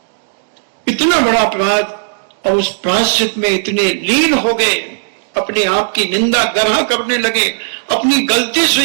इतना बड़ा अपराध। और उस प्रायश्चित में इतने लीन हो गए, अपने आप की निंदा ग्रह करने लगे, अपनी गलती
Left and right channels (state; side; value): silent; left; digital silence